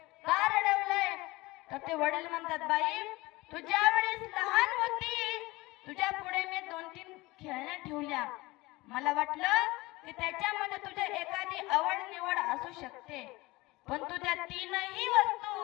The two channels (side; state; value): right; quieter; 21.2 dB